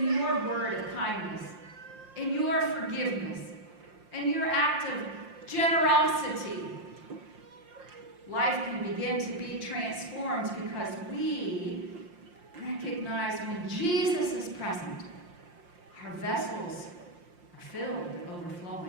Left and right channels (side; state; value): left; late; 5.7 ms